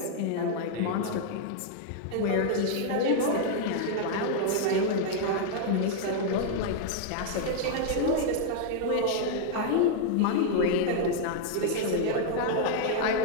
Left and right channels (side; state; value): both; different; correlation 0.00